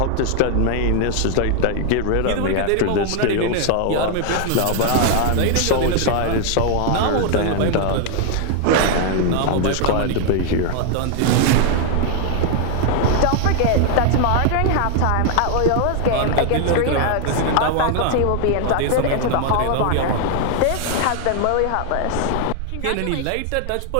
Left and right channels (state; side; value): different; both; correlation 0.00